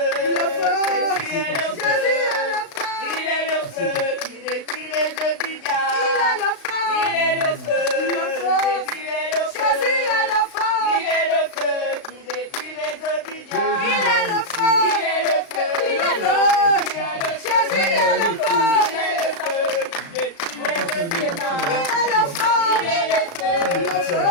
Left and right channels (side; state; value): right; late; 35 ms